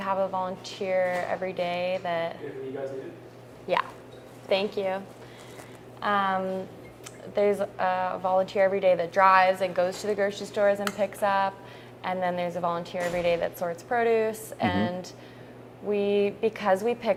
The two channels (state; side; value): identical; both; correlation 1.00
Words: a volunteer every day that. Yeah, thank you. There's a volunteer every day that drives and goes to the grocery stores and picks up. And then there's a volunteer every day that sorts produce. And because we